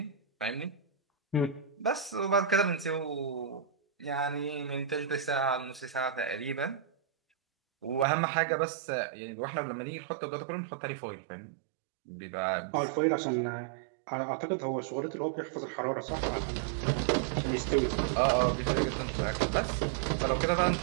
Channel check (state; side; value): drops out; left; at 8.1 s